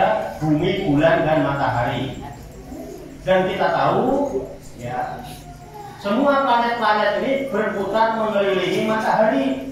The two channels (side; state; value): both; identical; correlation 1.00